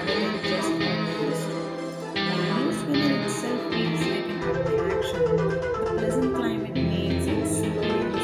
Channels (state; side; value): identical; both; correlation 1.00